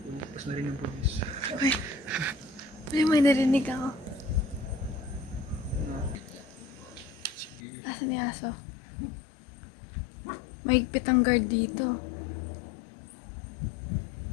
na rin yung police. Uy, may narinig ako. Asan yung aso? Mahigpit ang guard dito.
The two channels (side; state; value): right; drops out; at 7.6 s